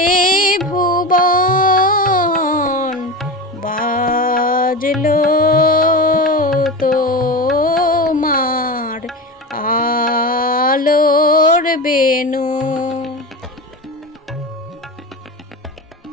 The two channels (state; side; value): normal; both; correlation 0.24